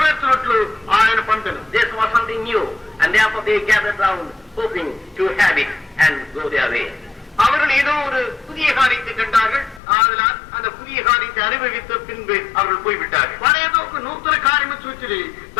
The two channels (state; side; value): drops out; right; at 9.8 s